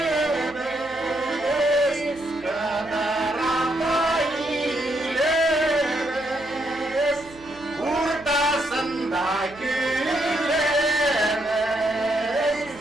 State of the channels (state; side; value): noise; right; hum, 23 dB below the sound